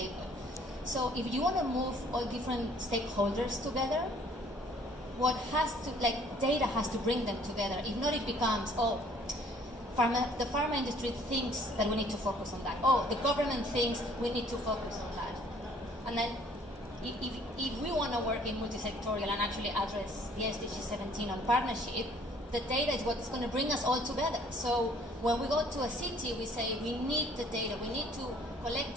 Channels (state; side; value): normal; both; correlation 0.58